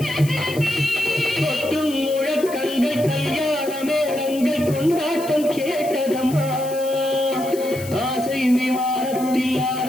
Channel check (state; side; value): noise; left; hiss, 15 dB below the sound